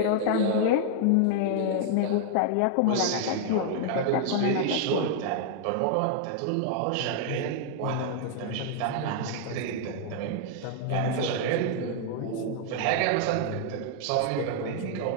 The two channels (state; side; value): different; both; correlation -0.01